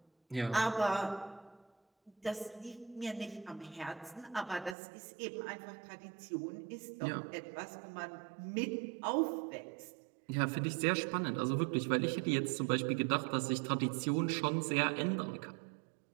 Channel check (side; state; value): left; drops out; at 4.8 s